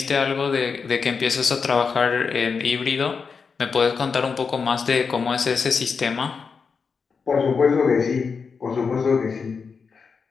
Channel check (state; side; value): quieter; right; 5.4 dB